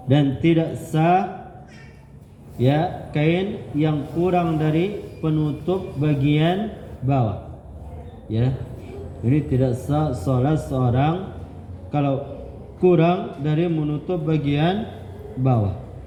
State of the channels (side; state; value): both; identical; correlation 1.00